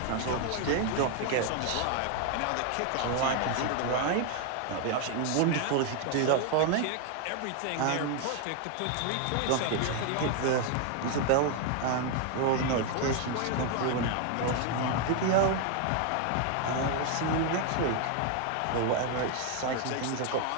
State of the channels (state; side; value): different; both; correlation 0.01